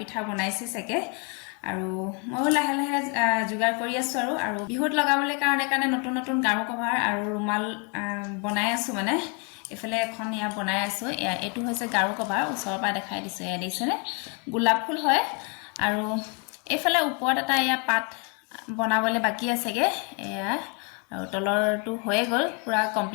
বনাইছে सके আৰু মই লাহে লাহে जुगार কৰি আছো আৰু বিহুত লগাবলৈ কাৰণে নতুন নতুন গাৰু কভাৰ আৰু ৰুমাল বনাই আছো মানে এফালে এখন ইয়া বনাই আছো এটো হৈছে গাৰু কভাৰ ওচৰৰ পৰা দেখাই দিছো এয়া দেখিছেনে গোলাপ ফুল হয় আৰু এফালে ওপৰত এটা ইয়া পাত বনাবলৈ বাকি আছেগে এয়া আৰু তলৰটো হৈ গল পুৰা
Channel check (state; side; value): quieter; right; 35.7 dB